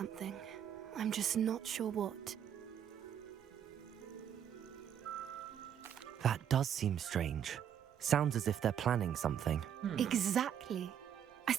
I'm just not sure what. That does seem strange. Sounds as if they're planning something. Exactly. I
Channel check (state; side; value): quieter; left; 9.2 dB